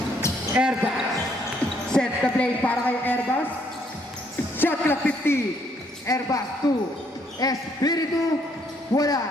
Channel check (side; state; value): both; normal; correlation 0.69